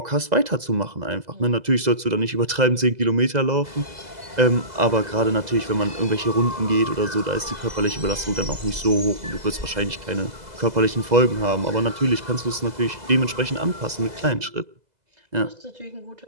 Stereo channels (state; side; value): late; left; 2.0 ms